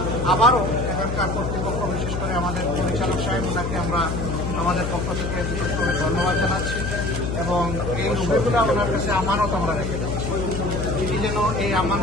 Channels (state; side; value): noise; left; hum, 3 dB below the sound